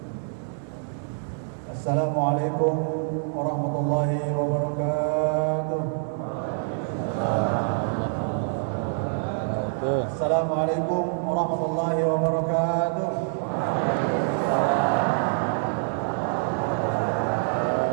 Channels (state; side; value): silent; left; 61 dB below the other